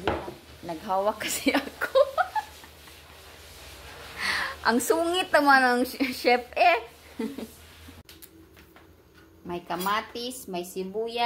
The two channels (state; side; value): identical; both; correlation 1.00